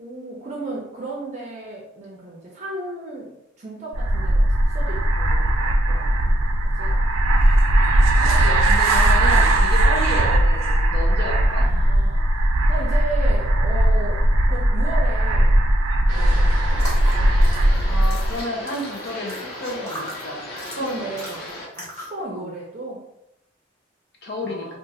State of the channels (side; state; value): both; normal; correlation 0.80